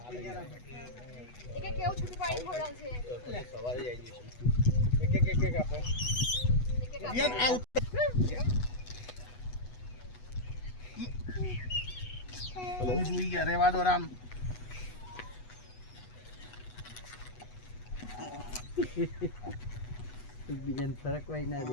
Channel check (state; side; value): late; right; 8.1 ms